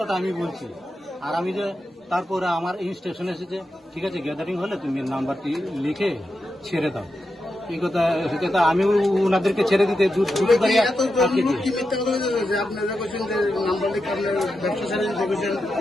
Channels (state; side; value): normal; both; correlation 0.88